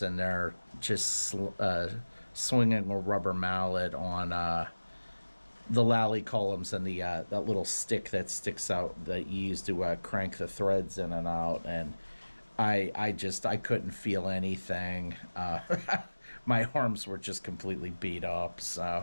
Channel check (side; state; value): both; inverted; correlation -1.00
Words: in there just swinging a rubber mallet on the lally columns and the that little stick that sticks out that you use to crank the threads in and out, and I couldn't feel anything. My arms were just completely beat up,